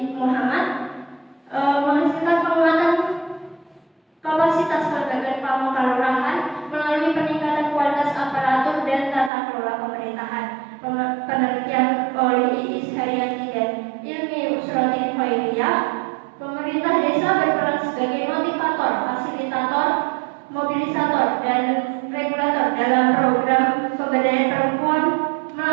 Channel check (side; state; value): left; drops out; at 9.3 s